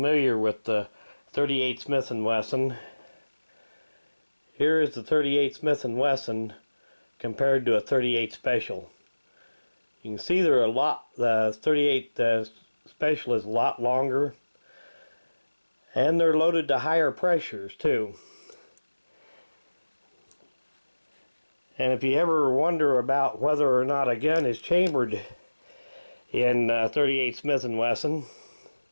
with the 38 Smith & Wesson, here is the 38 Smith & Wesson compared to a 38 Special. You can see they're the 38 Special is a lot longer, and they're loaded to higher pressures too. And if you ever wonder about whether or not a gun is chambered in 38 Smith & Wesson,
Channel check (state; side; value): inverted; both; correlation -1.00